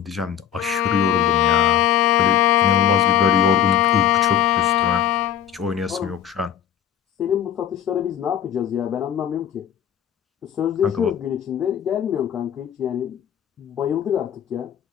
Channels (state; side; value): quieter; right; 9.7 dB